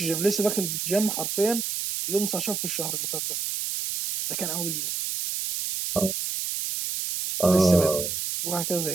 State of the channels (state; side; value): noise; right; hiss, 3 dB below the sound